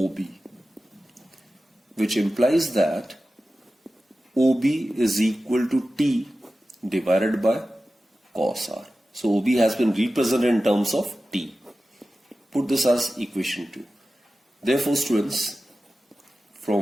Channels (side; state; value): both; normal; correlation 0.94